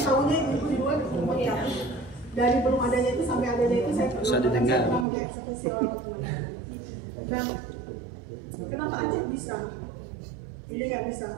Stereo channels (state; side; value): drops out; left; at 5.1 s